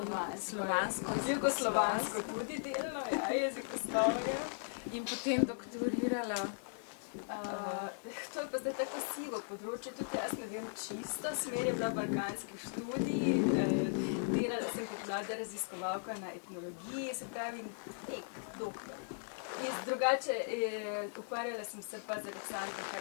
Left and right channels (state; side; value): silent; right; digital silence